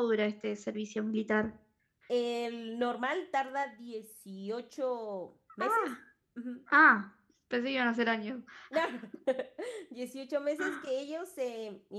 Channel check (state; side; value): identical; both; correlation 1.00